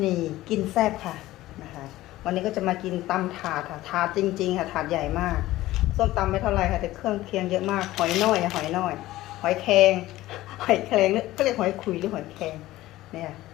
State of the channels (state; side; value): quieter; right; 16.4 dB